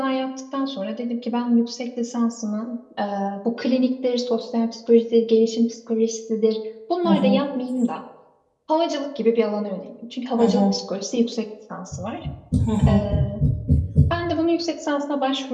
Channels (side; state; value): both; identical; correlation 1.00